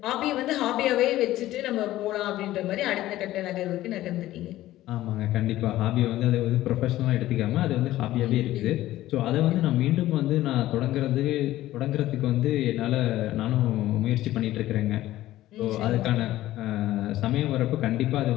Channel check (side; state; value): right; quieter; 15.1 dB